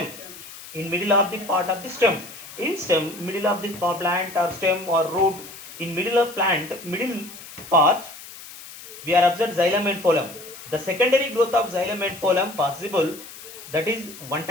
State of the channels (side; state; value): left; noise; hiss, 15 dB below the sound